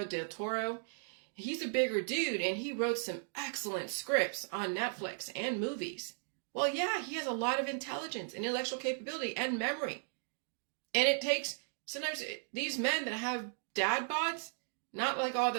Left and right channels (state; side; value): silent; left; digital silence